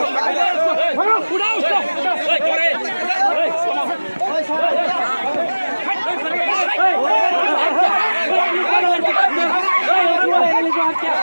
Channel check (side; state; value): both; inverted; correlation -1.00